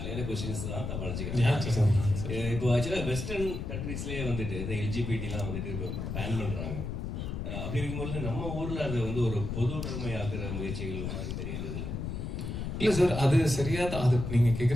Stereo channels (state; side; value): noise; left; rumble, 4 dB below the sound